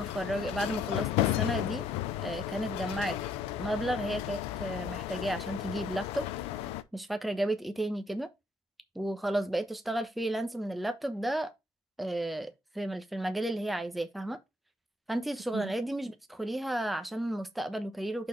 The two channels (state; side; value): normal; both; correlation 0.70